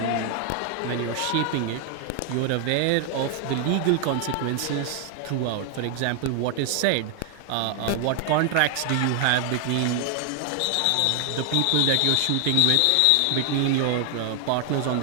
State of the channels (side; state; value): both; different; correlation 0.00